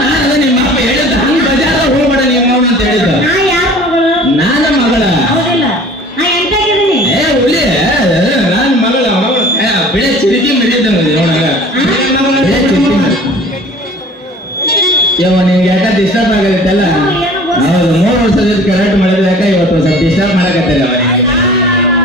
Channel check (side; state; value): both; normal; correlation 0.45